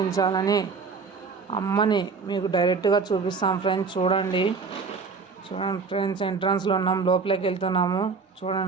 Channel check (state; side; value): quieter; left; 4.9 dB